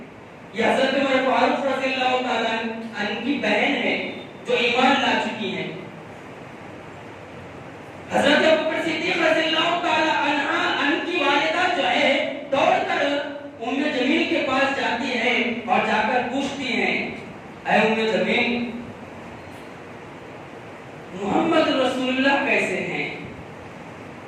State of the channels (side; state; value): both; identical; correlation 1.00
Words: یہ حضرت عمر فاروق رضی اللہ تعالیٰ عنہ کی بہن ہے جو ایمان لا چکی ہیں۔ حضرت ابو بکر صدیق رضی اللہ تعالیٰ عنہ کی والدہ جو ہے دوڑ کر ام جمیل کے پاس جاتی ہے اور جا کر پوچھتی ہیں اے ام جمیل محمد رسول اللہ کیسے ہیں؟